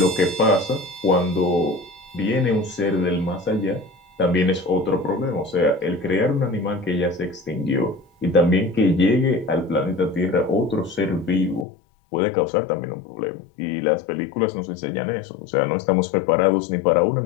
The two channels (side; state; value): right; drops out; at 11.7 s